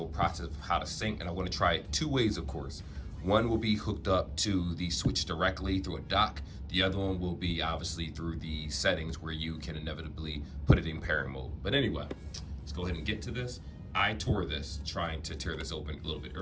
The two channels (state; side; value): identical; both; correlation 1.00